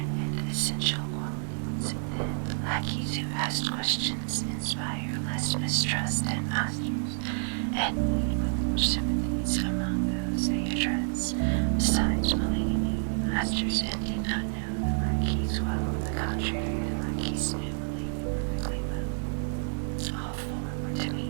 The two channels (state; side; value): silent; left; 59 dB below the other